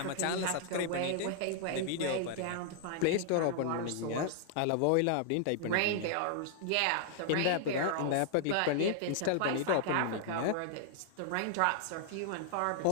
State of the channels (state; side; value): different; both; correlation -0.01